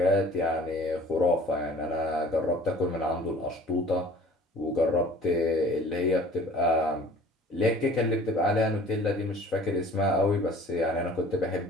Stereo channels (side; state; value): both; normal; correlation 0.48